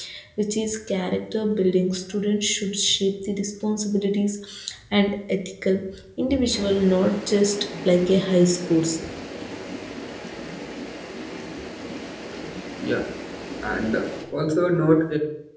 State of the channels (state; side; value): identical; both; correlation 1.00